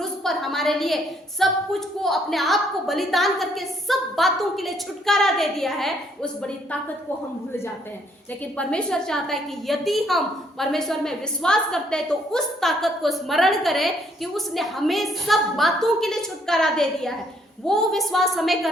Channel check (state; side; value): normal; both; correlation 0.68